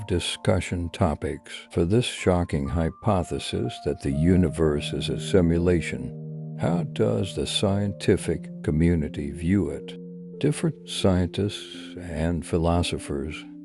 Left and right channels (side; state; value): both; identical; correlation 1.00